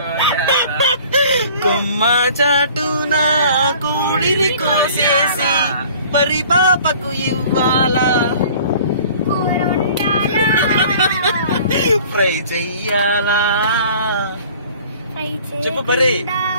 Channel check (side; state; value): both; inverted; correlation -0.49